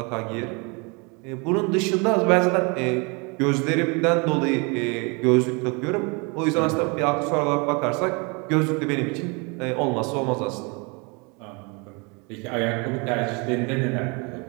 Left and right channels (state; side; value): quieter; left; 30.6 dB